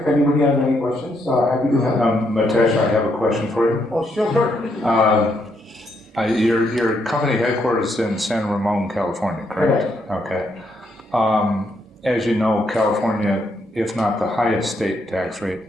anybody has any questions. Happy to help. Mitesh, I have a question for you. Oh, sure. Your company headquarters is in San Ramon, California, correct? Correct. Okay. As you know, California, if not the highest state tax rate,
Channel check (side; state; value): both; normal; correlation 0.76